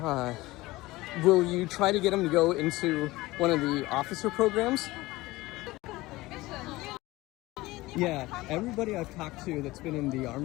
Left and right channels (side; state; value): right; quieter; 19.5 dB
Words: Will you try to get them to go into one of the officer programs? Yeah, everybody I've talked to that's been in the